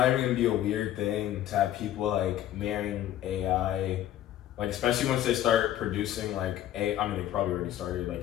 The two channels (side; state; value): right; quieter; 12.5 dB